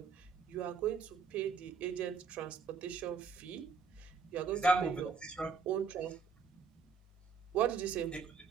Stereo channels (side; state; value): left; quieter; 5.5 dB